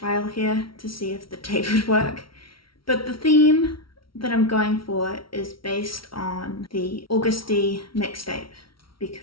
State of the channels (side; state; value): right; late; 0.74 ms